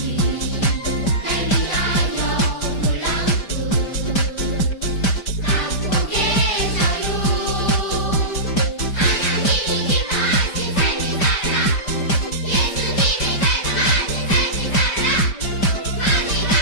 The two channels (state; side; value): late; right; 5.1 ms